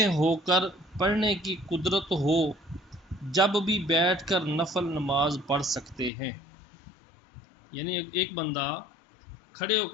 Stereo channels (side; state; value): right; drops out; at 6.1 s